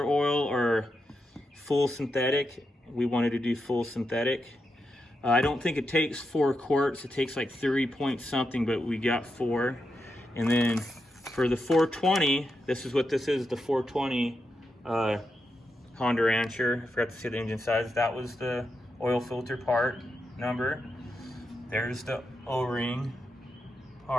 oil or full synthetic. We wanted to do full synthetic. I don't think it takes 4 quarts. It takes like 3 point something, but we got 4. And then for the 420, this is what this is, the 420 Honda Rancher. I forgot to say the engine size. That was the oil filter part number. There's the O-ring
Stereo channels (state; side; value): normal; both; correlation 0.86